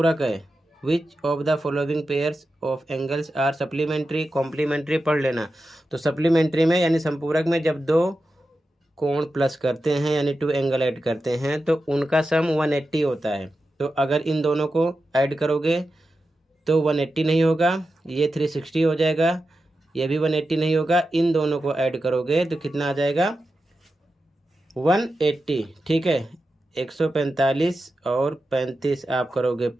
है? Which of the following pairs of angles are supplementary? Complementary पढ़ लेना। तो सप्लीमेंट्री में यानी संपूरक में जब दो कोण प्लस करते हैं यानी 2 एंगल ऐड करते हैं तो उनका सम 180 होता है। तो अगर इन दोनों को ऐड करोगे तो 180 नहीं होगा, ये 360 हो जाएगा, ये भी 180 नहीं होगा, इन दोनों को ऐड करोगे तो कितना आ जाएगा? 180। ठीक है। 145 और 35 आप करोगे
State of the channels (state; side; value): normal; both; correlation 0.91